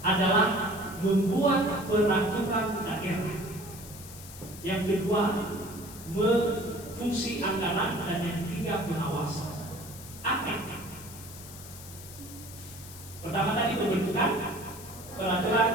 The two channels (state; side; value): noise; left; hiss, 15 dB below the sound